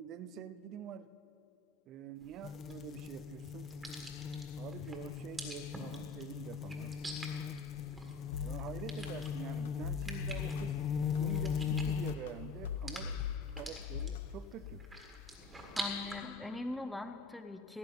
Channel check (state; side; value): quieter; right; 4.0 dB